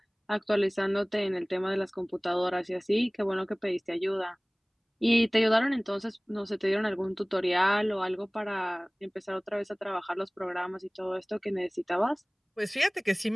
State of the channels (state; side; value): identical; both; correlation 1.00